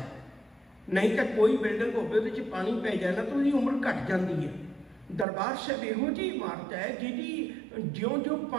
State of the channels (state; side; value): drops out; left; at 5.2 s